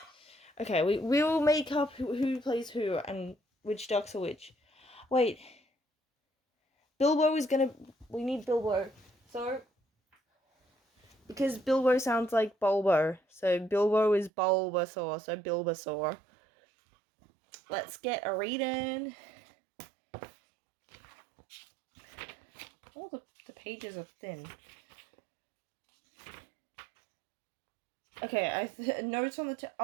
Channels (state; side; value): drops out; left; at 14.3 s